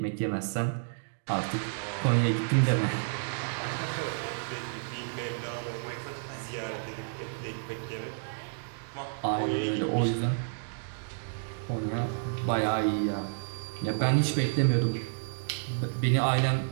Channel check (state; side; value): silent; left; digital silence